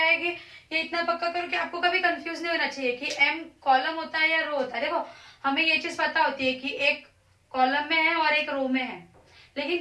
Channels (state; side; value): identical; both; correlation 1.00